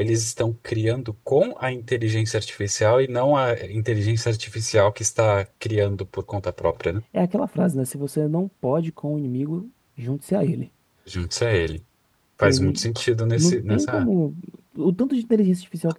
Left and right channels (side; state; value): both; identical; correlation 1.00